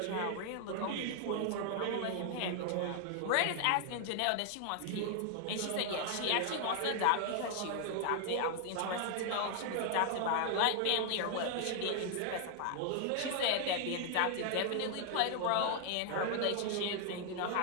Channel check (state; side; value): different; both; correlation 0.00